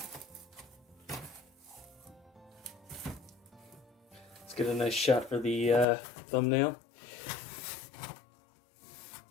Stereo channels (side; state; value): right; drops out; at 5.9 s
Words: Let's get a nice shot for the thumbnail.